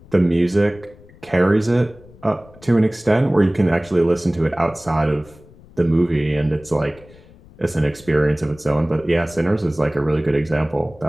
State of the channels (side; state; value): left; noise; rumble, 24 dB below the sound